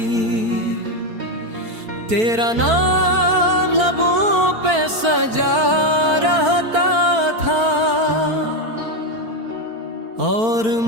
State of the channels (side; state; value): left; late; 4.5 ms